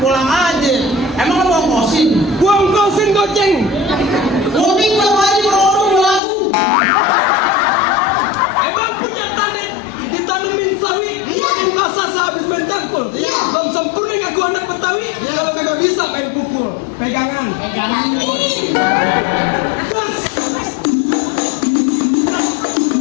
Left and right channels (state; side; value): drops out; right; at 6.2 s